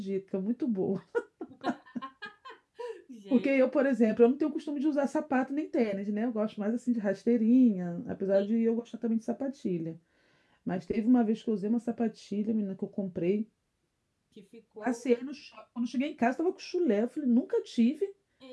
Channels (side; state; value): both; identical; correlation 1.00